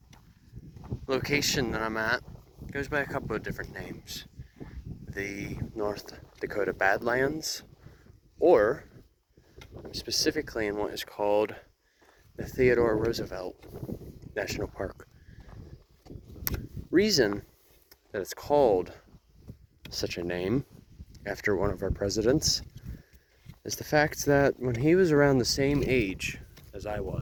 location that I'm at goes by a couple of different names. The North Dakota Badlands, or I'm specifically in what is called the Theodore Roosevelt National Park. Reason that it's called such a name after one of our presidents is the fact that when he was around the same age as I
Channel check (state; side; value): identical; both; correlation 1.00